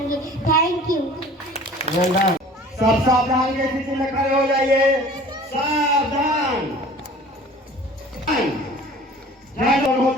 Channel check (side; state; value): both; normal; correlation 0.46